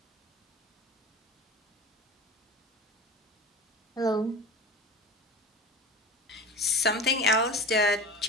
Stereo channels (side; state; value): both; normal; correlation 0.32